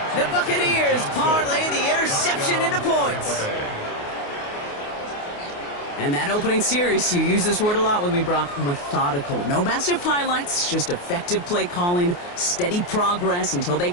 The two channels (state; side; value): late; right; 28 ms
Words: The Buccaneers parlay the interception into points. And that opening series, you use this word a lot with me, Brock, methodical. No massive highlights, just effective play calling, steady progress until they